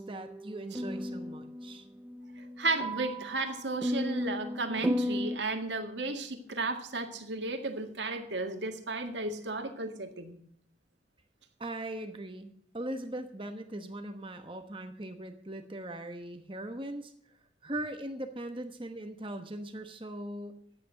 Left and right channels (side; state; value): both; normal; correlation 0.38